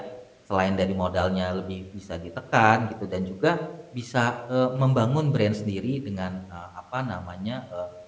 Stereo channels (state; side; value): identical; both; correlation 1.00